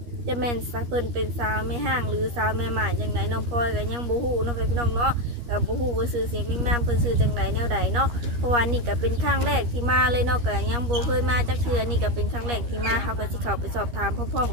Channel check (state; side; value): late; left; 13 ms